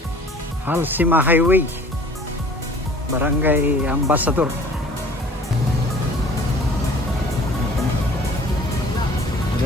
Halsima Highway. Barangay Ambassador.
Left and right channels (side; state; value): both; normal; correlation 0.49